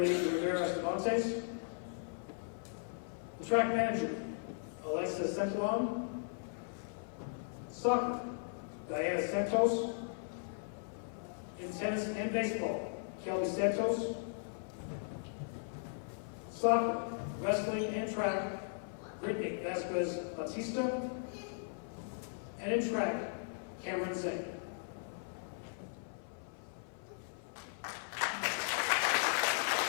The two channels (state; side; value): silent; right; 53 dB below the other